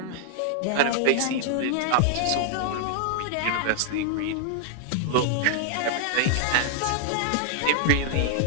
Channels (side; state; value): both; different; correlation -0.01